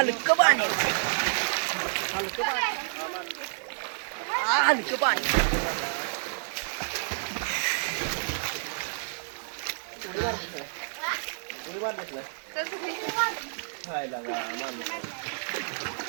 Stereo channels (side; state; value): left; silent; digital silence